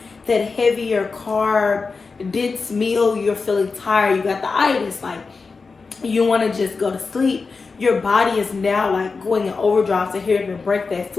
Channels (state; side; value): quieter; right; 4.5 dB